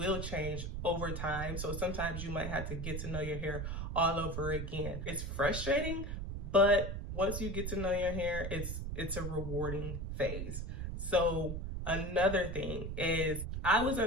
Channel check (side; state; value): right; noise; rumble, 4 dB below the sound